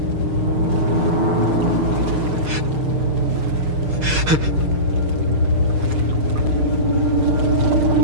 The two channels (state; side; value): late; left; 6.5 ms